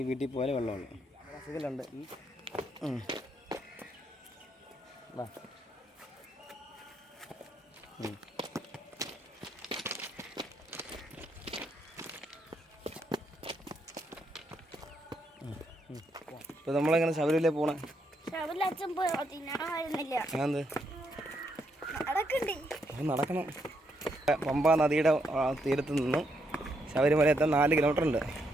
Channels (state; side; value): normal; both; correlation 0.77